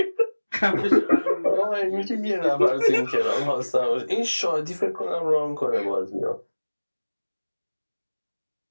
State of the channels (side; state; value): both; inverted; correlation -1.00